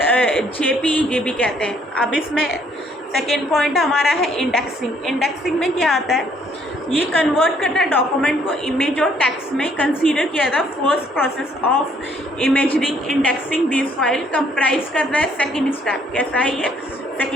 जेपीईजी भी कहते हैं। अब इसमें सेकेंड पॉइंट हमारा है इंडेक्सिंग। इंडेक्सिंग में क्या आता है ये कन्वर्ट करता है डॉक्यूमेंट को इमेज और टेक्स्ट में। कंसीडर किया था first process of imaging indexing this file comprise करता है सेकेंड स्टेप। कैसा है ये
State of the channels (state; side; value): normal; both; correlation 0.65